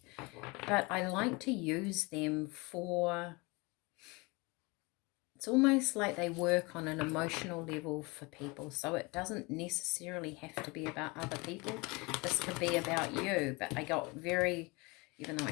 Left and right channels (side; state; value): right; quieter; 26.2 dB